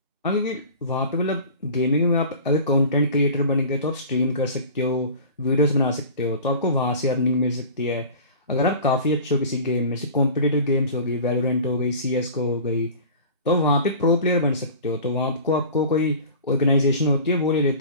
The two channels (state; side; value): inverted; both; correlation -0.39